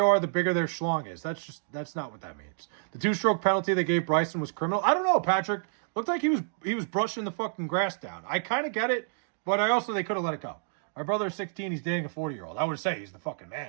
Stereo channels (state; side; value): silent; left; digital silence